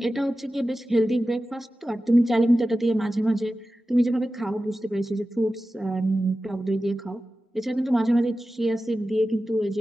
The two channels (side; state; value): both; normal; correlation 0.94